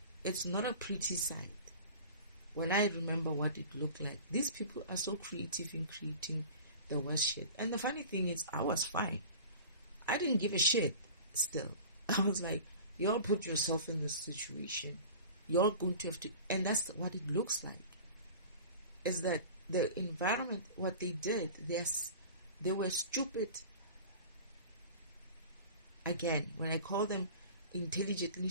It's not a pretty sight. When I remember what it looked like, these people are so creative in creating the worst shit. And the funny thing is, I was fine. I didn't give a shit still. I was like, y'all put yourself in this situation. You're going to have to, and that's what it looks like. Is that the environment, what they did, they were stupid. Again, when I call them intelligently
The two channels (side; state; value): both; inverted; correlation -0.39